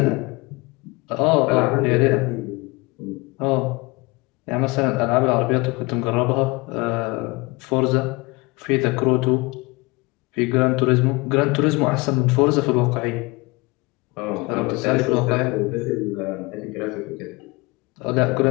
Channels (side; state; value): right; quieter; 25.1 dB